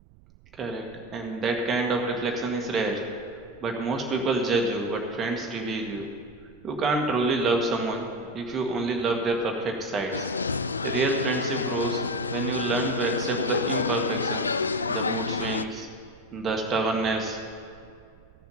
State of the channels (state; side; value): noise; right; rumble, 26 dB below the sound